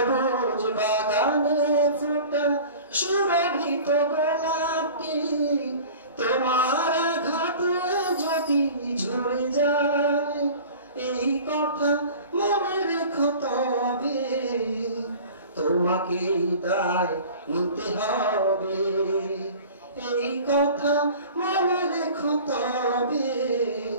বাগানে ফোটা সুরভিত গোলাপটি তোমার আঘাতে যদি ঝরে যায়, এই কথা মনে রেখো তবে তোমাকে দায় নিতে হবে। এই কথা মনে রেখো তবে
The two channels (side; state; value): both; inverted; correlation -0.41